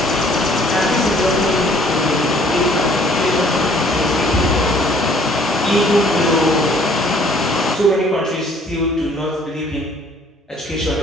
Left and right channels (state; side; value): normal; both; correlation 0.58